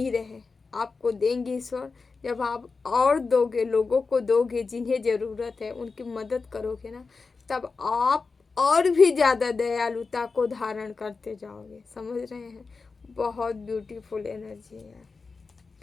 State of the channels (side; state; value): right; quieter; 4.4 dB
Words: रहे। आपको देंगे ईश्वर, जब आप और दोगे, लोगों को दोगे जिन्हें ज़रूरत है, उनकी मदद करोगे ना, तब आप और भी ज़्यादा दयालुता को धारण करते जाओगे। समझ रहे हैं? बहुत ब्यूटीफुल एनर्जी है।